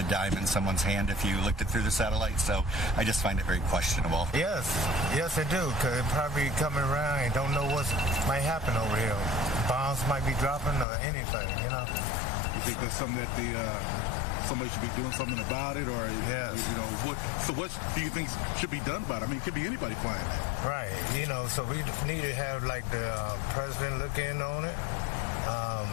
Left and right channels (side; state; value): right; drops out; at 10.9 s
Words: dime in someone's hand if you looked it through the satellite. So I just find it very questionable. Yes, I do, because it probably coming around and don't know what might happen over here. Bombs might be dropping or anything, you know. You think that's something that somebody should be doing something about it, or yes. You know, what do you think should be done about it? I mean, it could be anybody flying that. Right, you know, so we need to have like the president look in on it.